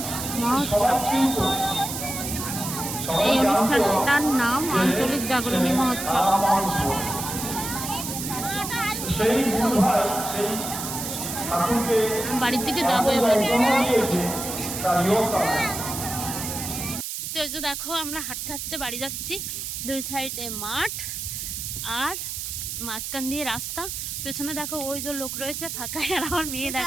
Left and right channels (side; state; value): right; noise; hiss, 5 dB below the sound